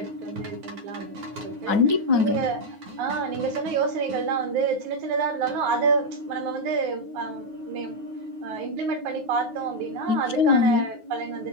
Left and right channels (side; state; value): left; late; 9.5 ms